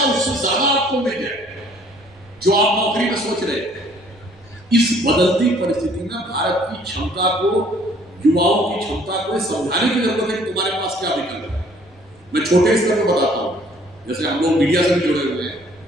उससे ज्यादा आपको मिल जाए जो आप नौकरी में सोच रहे हैं। इस बदलती परिस्थिति में भारत की क्षमता को, युवाओं की क्षमता को समझाने की जरूरत है कि तुम्हारे पास क्या विकल्प है। मैं छोटे स्तर पर बताता हूं, जैसे हम लोग मीडिया से भी जुड़े हुए हैं।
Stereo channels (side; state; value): right; noise; rumble, 30 dB below the sound